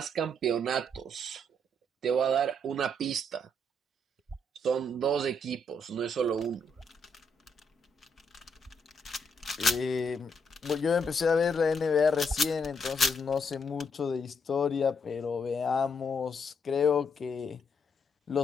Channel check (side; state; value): both; normal; correlation 0.75